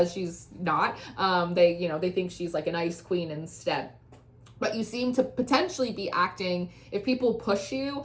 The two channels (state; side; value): identical; both; correlation 1.00